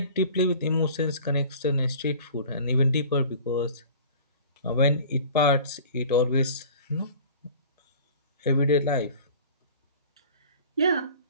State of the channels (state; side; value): inverted; both; correlation -0.44